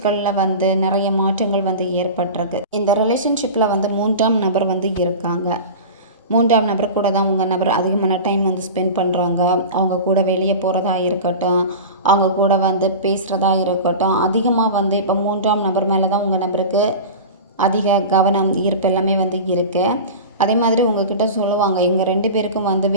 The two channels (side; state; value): both; inverted; correlation -0.31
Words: வந்து நிறைய மாற்றங்கள் வந்து ஏற்பட்டிருக்கு. இந்த ரிலேஷன்ஷிப்பில் வந்து 3ஆம் நபர் வந்து இருக்காங்க. 3ஆம் நபர் கூட தான் உங்கள் நபர் அதிகமான டைம் வந்து ஸ்பெண்ட் பண்ணுறாங்க. அவங்க கூட வெளியே போகிறதா இருக்கட்டும், அவங்க கூட வந்து பேசுகிறதா இருக்கட்டும், அதிகமாக வந்து இப்போ 3ஆம் நபர் மேலே தான் உங்கள் நபருக்கு அதிக கவனம், ஈர்ப்பு எல்லாமே வந்து இருக்குது. அதே மாதிரி உங்ககிட்ட சொல்லுவாங்க, எங்கள் 2 பேருக்கும் வந்து